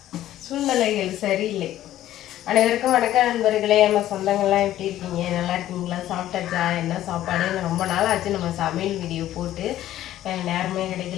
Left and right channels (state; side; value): quieter; right; 13.2 dB